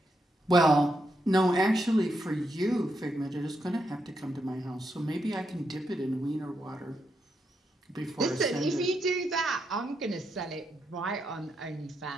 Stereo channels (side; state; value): both; normal; correlation 0.82